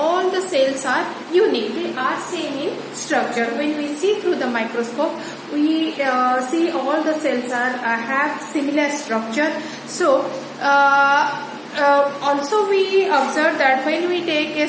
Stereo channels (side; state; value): both; identical; correlation 1.00